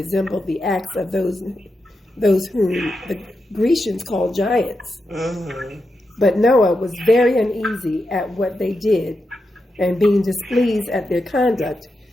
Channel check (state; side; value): normal; both; correlation 0.87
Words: the acts of those whom the Grecians called giants. But Noah was very uneasy at what they did, and being displeased at their conduct,